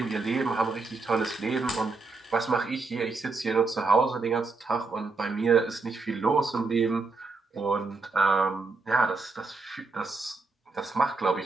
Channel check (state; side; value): quieter; left; 3.9 dB